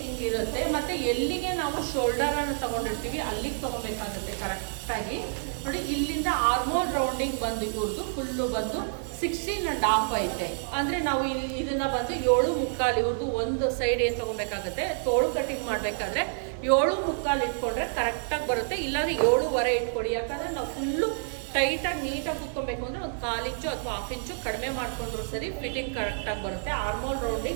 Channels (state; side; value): silent; left; 57 dB below the other